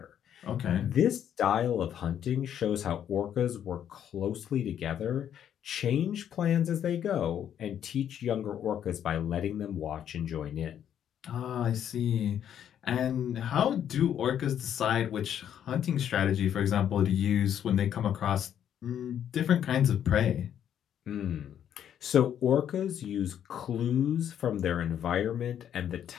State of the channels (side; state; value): right; quieter; 9.7 dB